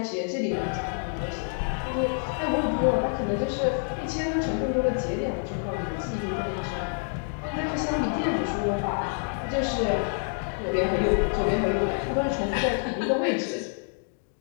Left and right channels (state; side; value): silent; right; 59 dB below the other